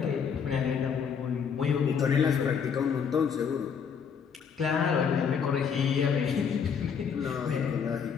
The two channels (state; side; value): quieter; right; 6.9 dB